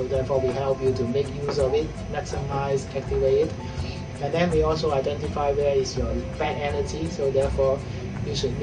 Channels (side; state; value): both; identical; correlation 1.00